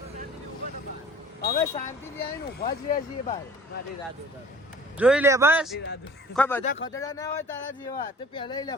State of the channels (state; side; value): normal; both; correlation 0.48